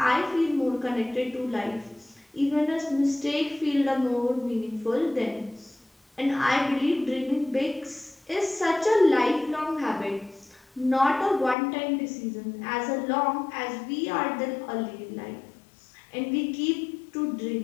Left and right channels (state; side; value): drops out; right; at 11.6 s